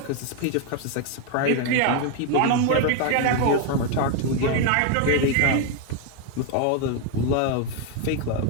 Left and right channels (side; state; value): both; different; correlation 0.01